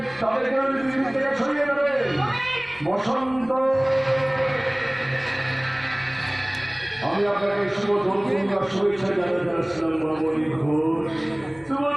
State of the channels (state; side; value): noise; left; rumble, 29 dB below the sound